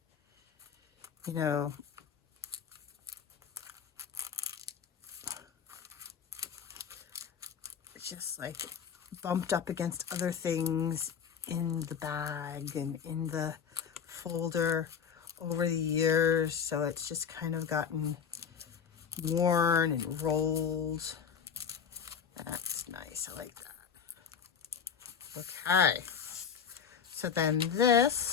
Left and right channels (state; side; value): quieter; right; 7.2 dB